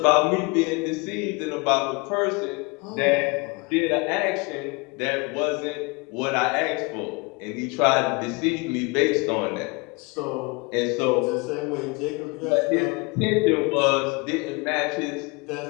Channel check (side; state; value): right; quieter; 28.2 dB